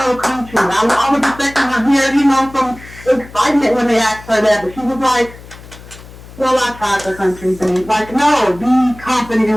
love country. I was expecting her to hear, some excitement when they asked her that. But she was like, well, I tried the country thing. Like, no, be confident in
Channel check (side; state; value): left; noise; hum, 18 dB below the sound